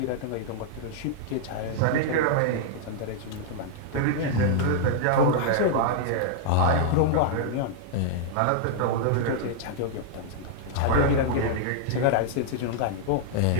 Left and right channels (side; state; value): both; different; correlation -0.01